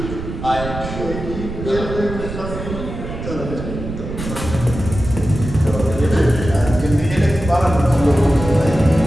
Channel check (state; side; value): noise; right; rumble, 8 dB below the sound